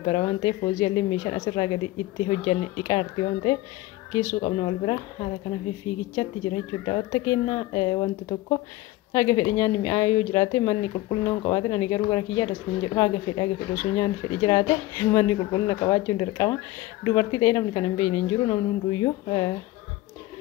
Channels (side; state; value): right; quieter; 17.6 dB